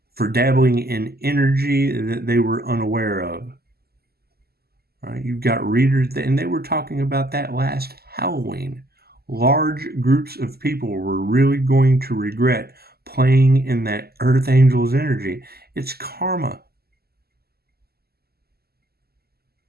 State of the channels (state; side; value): late; left; 0.46 ms